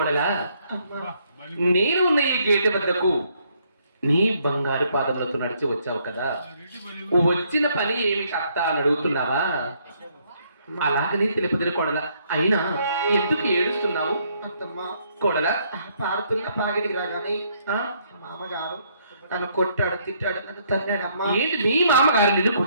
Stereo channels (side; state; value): both; inverted; correlation -0.69